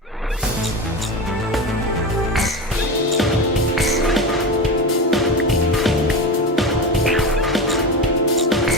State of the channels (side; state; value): both; normal; correlation 0.23